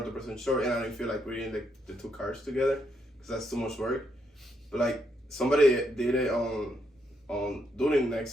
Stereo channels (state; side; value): normal; both; correlation 0.77